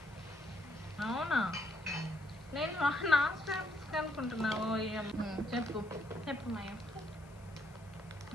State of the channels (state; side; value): noise; left; hiss, 28 dB below the sound